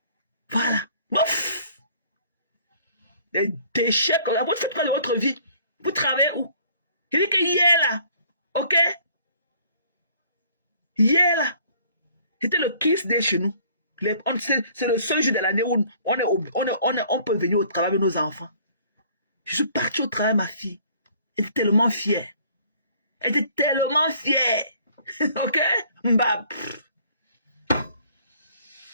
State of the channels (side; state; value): both; inverted; correlation -0.57